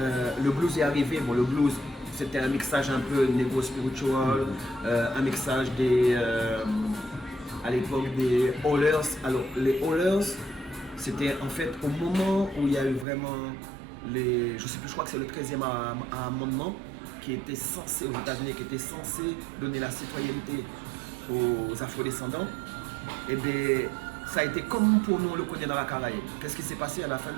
blues est arrivé, le blues c'était un mixage un peu négro spiritual, un mixage à l'époque des Hollers. Alors les Hollers, c'était en fait au moment où il y a eu vraiment je crois que c'est le 13e amendement qui était censé, aux États-Unis, qui était censé donner la citoyenneté aux afrodescendants. Et bien ça a été comme pour nous on le connaît dans la Caraïbe. Qu'est-ce qui s'est passé à la fin de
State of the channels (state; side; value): drops out; left; at 13.1 s